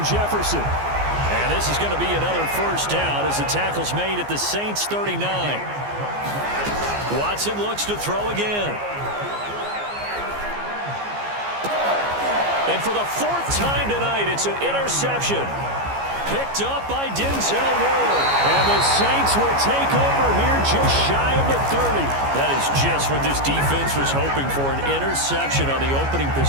Jefferson. And this is going to be another first down as the tackle's made at the Saints 39. Watson looks to throw again. And for the 4th time tonight, it's an interception. Picked up by Denzel Ward. And the Saints will take over here just shy of the 30. That is just what this defense was hoping for, an interception on the opening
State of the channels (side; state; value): left; late; 15 ms